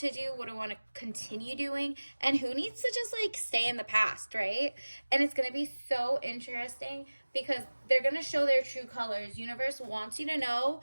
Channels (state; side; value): inverted; both; correlation -1.00